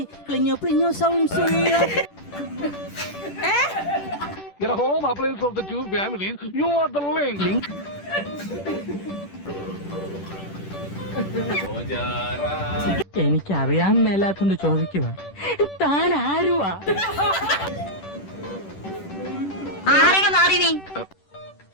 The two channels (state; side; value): late; right; 10 ms